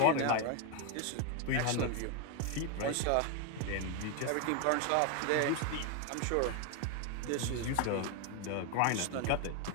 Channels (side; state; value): both; different; correlation 0.01